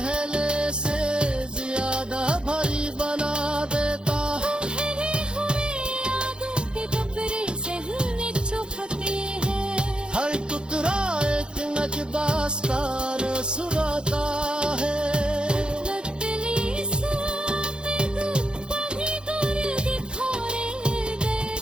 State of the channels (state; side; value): late; left; 0.051 ms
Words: से ज्यादा भारी बना देता है। ठहरे हुए यादों के डबरे सहने चुभते हैं। हर टुकड़ा एक नजदास कार सुनाता है। लतली सामें वही दूर दिखोरे